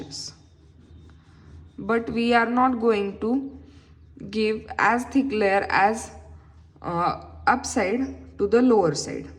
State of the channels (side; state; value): both; identical; correlation 1.00